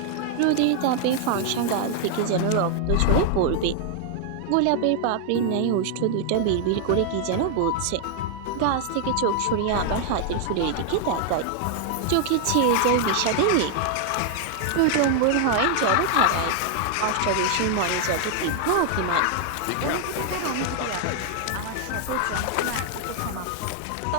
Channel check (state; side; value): different; both; correlation 0.00